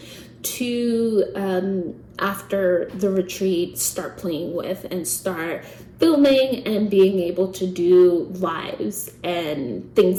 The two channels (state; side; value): identical; both; correlation 1.00